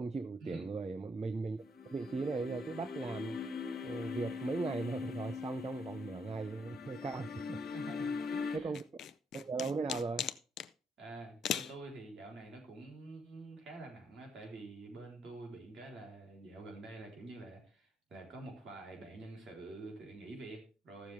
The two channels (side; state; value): both; normal; correlation 0.74